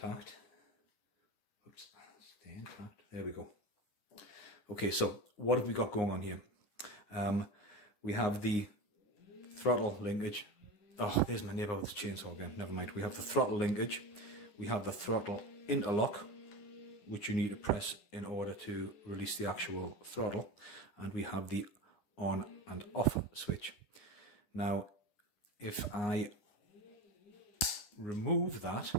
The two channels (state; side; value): late; right; 9.6 ms